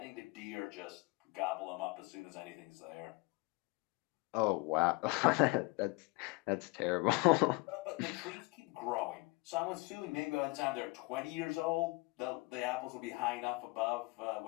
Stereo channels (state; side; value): quieter; right; 26.3 dB